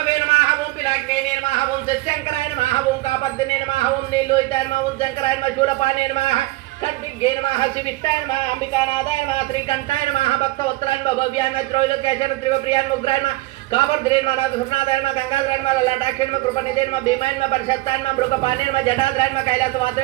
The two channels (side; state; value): left; quieter; 19.6 dB